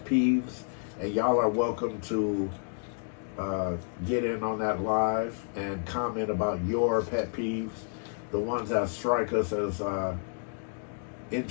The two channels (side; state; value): right; silent; 58 dB below the other